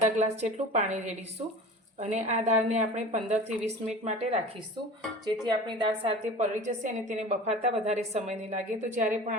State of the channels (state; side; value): normal; both; correlation 0.38